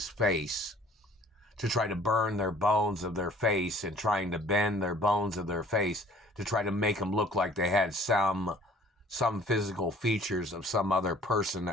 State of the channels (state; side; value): normal; both; correlation 0.53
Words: face to try to burn their bones of their face and trying to bend their bones of their face to try to make them look like they had some physical features of some other person